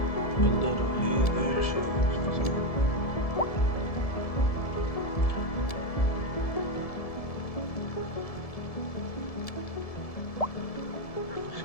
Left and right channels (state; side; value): late; right; 1.7 ms